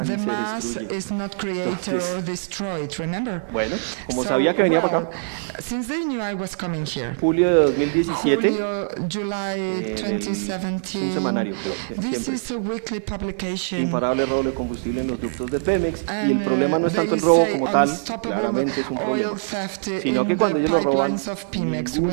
The mass is not created or destroyed, remember? So, well, since they knew I was coming here, July 2017, this is a weekly publication, and they say unstoppable oil theft in the pipelines of Pemex.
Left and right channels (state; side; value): silent; left; 63 dB below the other